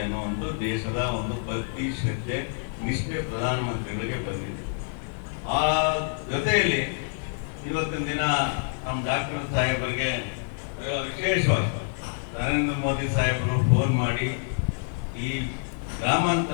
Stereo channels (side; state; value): right; silent; digital silence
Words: ಅನ್ನೋ ಒಂದು ದೇಶದ ಒಂದು ಭಕ್ತಿ ಶ್ರದ್ಧೆ ನಿಷ್ಠೆ ಪ್ರಧಾನಮಂತ್ರಿಗಳಿಗೆ ಬಂದಿದೆ. ಆ ಜೊತೆಯಲ್ಲಿ ಇವತ್ತಿನ ದಿನ ನಮ್ಮ ಡಾಕ್ಟರ್ ಸಾಹೇಬರಿಗೆ ವಿಶೇಷವಾಗಿ ನರೇಂದ್ರ ಮೋದಿ ಸಾಹೇಬರು ಫೋನ್ ಮಾಡಿ ಈ